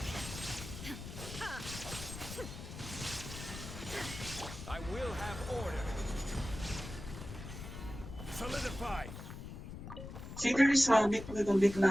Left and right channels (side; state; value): left; noise; rumble, 10 dB below the sound